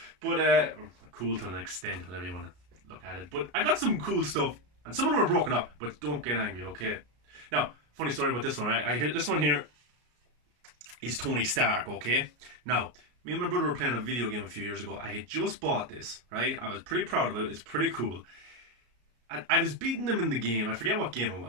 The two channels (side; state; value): left; late; 33 ms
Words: but cool to an extent, whatever you want to look at it. But I got some cool stuff, and some of them are broken up, but don't get angry, okay? Now, funny story about this one, right? I hear this one here is Tony Stark, okay? Now, me and my brother were playing a video game a few years ago. I had just bought this, right? I was pretty proud of it. It's pretty cool. I was beating him in the game. I forget what game it